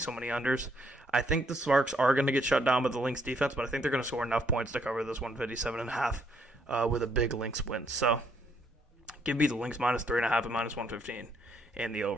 so many unders. I think the Sparks are going to get shut down by the Lynx defense, but I think they're going to score enough points to cover this 157.5 with a big Lynx win. So give me the Lynx minus 3.5 at minus 115 and the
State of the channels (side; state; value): both; normal; correlation 0.70